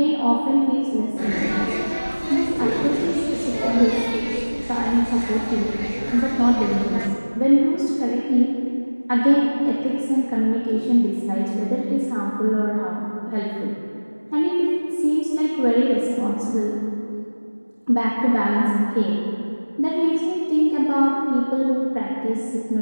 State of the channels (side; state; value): both; inverted; correlation -1.00